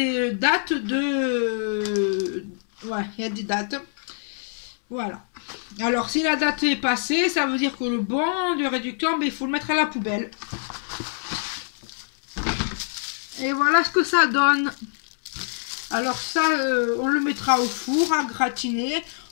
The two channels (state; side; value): silent; right; 62 dB below the other